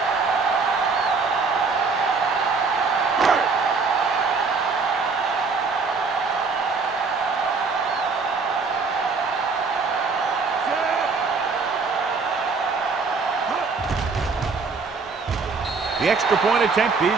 The extra point attempt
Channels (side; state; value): left; quieter; 4.6 dB